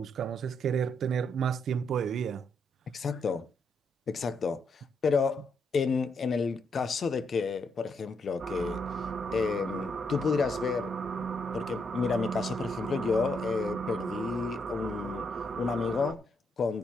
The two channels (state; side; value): normal; both; correlation 0.77